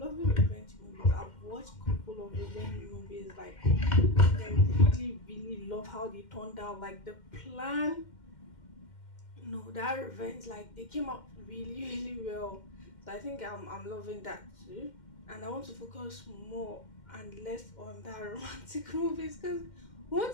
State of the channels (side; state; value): right; late; 2.1 ms